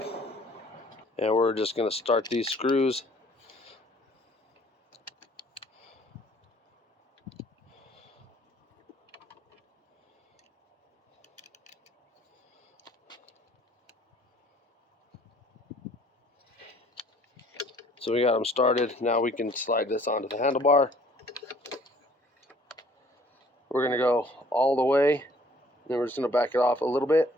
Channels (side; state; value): both; normal; correlation 0.56